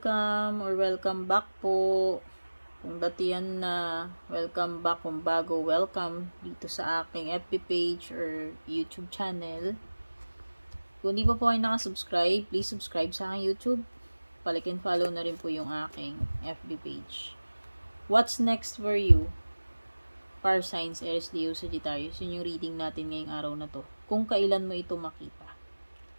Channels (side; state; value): both; inverted; correlation -1.00